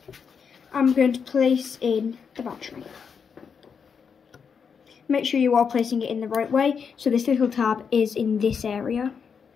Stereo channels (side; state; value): right; quieter; 6.4 dB